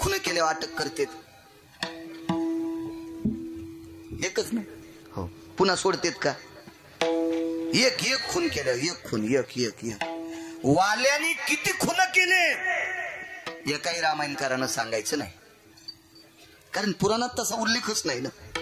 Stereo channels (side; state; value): both; identical; correlation 1.00